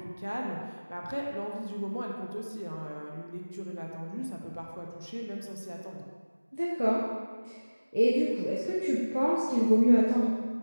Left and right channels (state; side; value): inverted; both; correlation -1.00